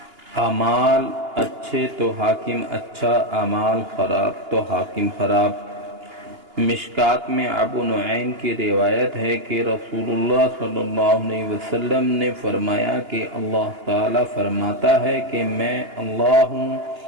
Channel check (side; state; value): left; late; 2.9 ms